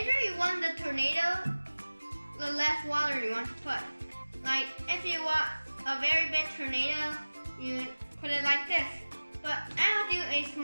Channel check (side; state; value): both; inverted; correlation -1.00